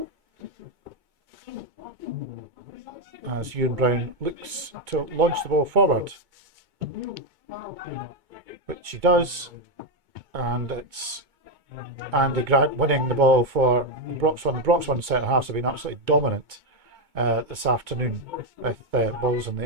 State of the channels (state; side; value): late; left; 2.2 ms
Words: as Ewan Brown looks to launch the ball forward, which he does, and it's Andy Grant winning the ball for Broxburn. The Broxburn centre halves have been absolutely dominant this afternoon with balls in the